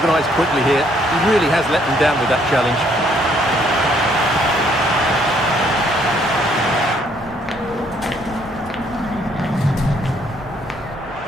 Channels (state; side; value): normal; both; correlation 0.67